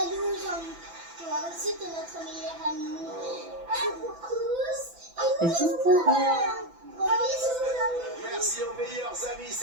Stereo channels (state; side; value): late; left; 6.0 ms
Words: Jean-Luc. Toi aussi, t'es notre meilleur ami. Un pour tous et tous pour un. Gros bisous, Jean-Luc. Merci aux meilleurs amis,